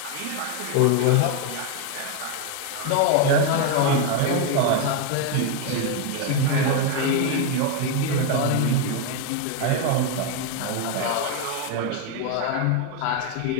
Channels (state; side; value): different; both; correlation 0.01